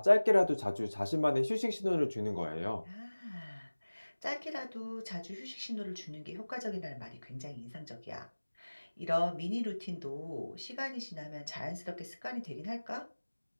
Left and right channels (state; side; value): inverted; both; correlation -1.00